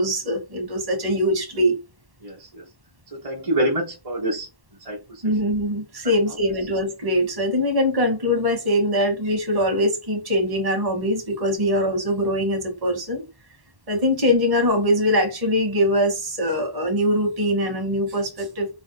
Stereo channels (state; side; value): late; left; 1.1 ms